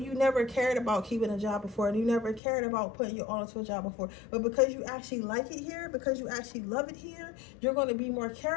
you never cared about keeping a job before, and you never cared about putting your all into a job before. But because you actually like it here, because you actually love it here, you're going to be more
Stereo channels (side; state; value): right; drops out; at 2.4 s